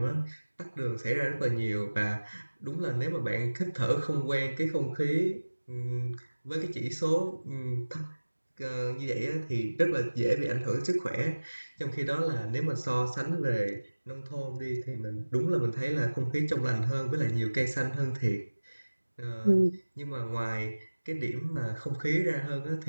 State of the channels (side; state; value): both; inverted; correlation -1.00